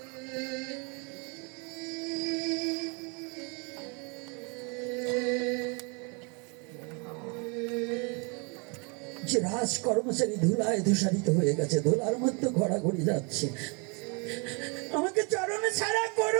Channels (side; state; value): left; quieter; 33.6 dB